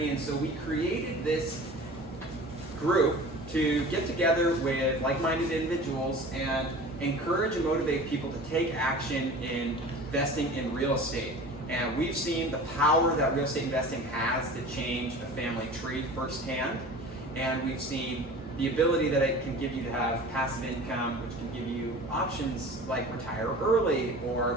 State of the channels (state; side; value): normal; both; correlation 0.39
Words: And so we created this group to get together with like-minded individuals and encourage and motivate people to take action in investing in real estate. And we've seen the power that real estate investing has to change a family tree firsthand. And we've seen the ability that it can give you to have passive income, which can give you options like retire early or